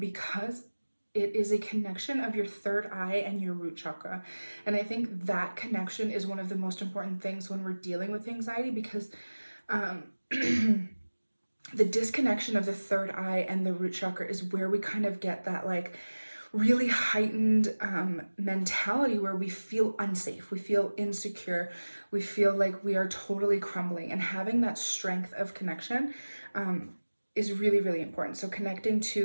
it is a connection of your third eye and your root chakra. And I think that connection is one of the most important things when we're dealing with anxiety, because the disconnection of the third eye and the root chakra is where we kind of get that like really heightened mentality where we feel unsafe, we feel insecure, we feel like we are totally crumbling. And having that strength of connection is really, really important. So connecting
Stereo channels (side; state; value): both; inverted; correlation -1.00